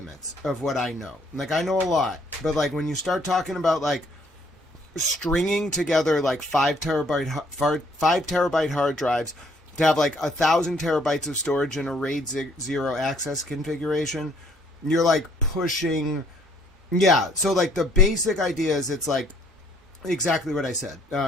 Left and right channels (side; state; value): both; normal; correlation 0.63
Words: of what I know. Like, I know a lot, but like when you start talking about like stringing together like 5 terabyte hard drives to have like 1,000 terabytes of storage in a RAID 0 access configuration, you're like pushing. Yeah. So like the basic idea is it's like exactly what I said.